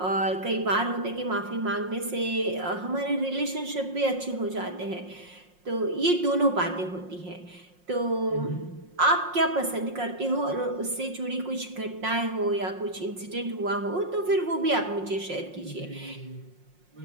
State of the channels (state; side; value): late; left; 5.6 ms